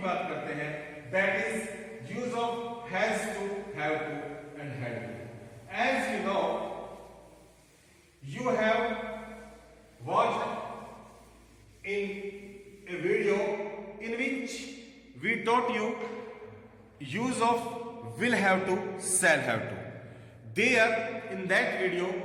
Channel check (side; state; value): both; identical; correlation 1.00